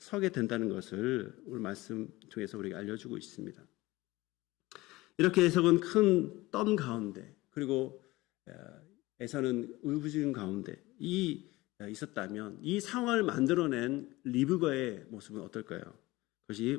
된다는 것을 오늘 말씀 통해서 우리가 알려주고 있습니다. 이렇게 에서는 큰 떤 가운데 그리고 에서는 울부짖은 가운데 있었다면 이 상황을 만들어낸 리브가의 모습은 어떨까요?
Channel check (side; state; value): right; quieter; 20.0 dB